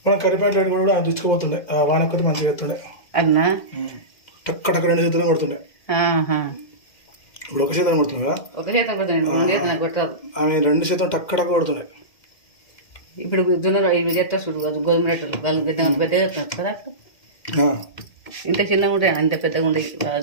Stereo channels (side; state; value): right; late; 2.1 ms